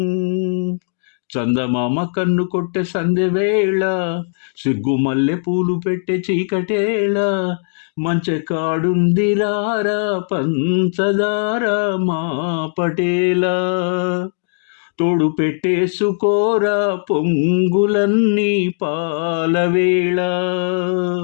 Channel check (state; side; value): silent; right; digital silence